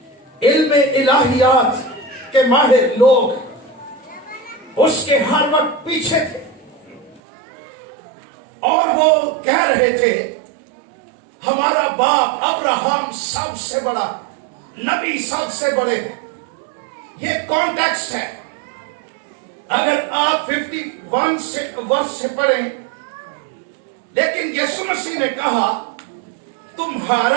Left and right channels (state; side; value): drops out; left; at 7.2 s